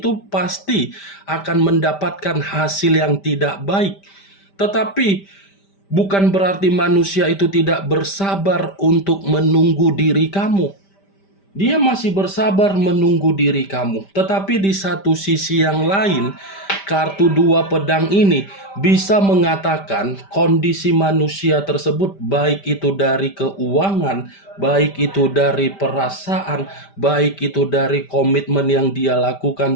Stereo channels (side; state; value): right; late; 5.1 ms